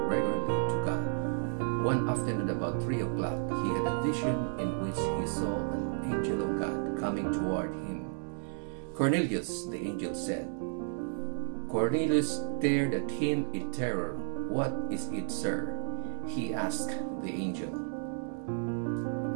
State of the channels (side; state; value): left; silent; digital silence